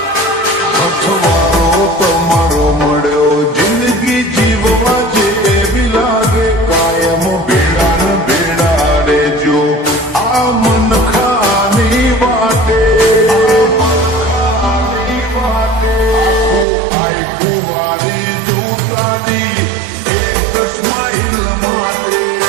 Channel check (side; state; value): left; drops out; at 16.7 s